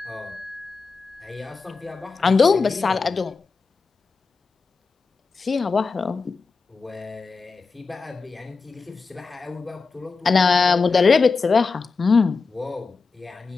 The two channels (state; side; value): quieter; right; 4.5 dB